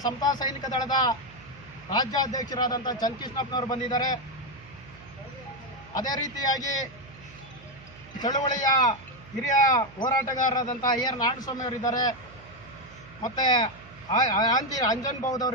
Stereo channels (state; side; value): noise; right; hum, 21 dB below the sound